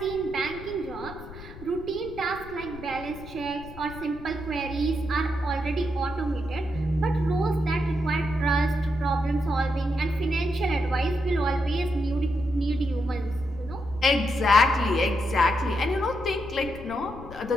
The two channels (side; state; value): left; noise; rumble, 15 dB below the sound